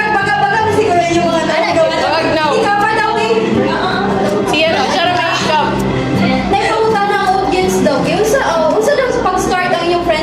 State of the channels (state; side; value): identical; both; correlation 1.00